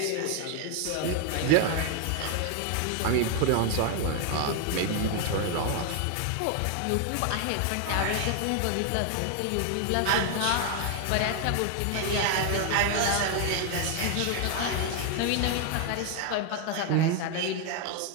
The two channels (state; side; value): different; both; correlation 0.00